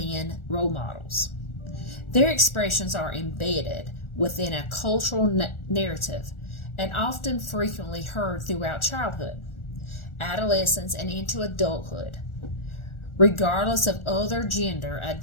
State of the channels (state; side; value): late; right; 1.4 ms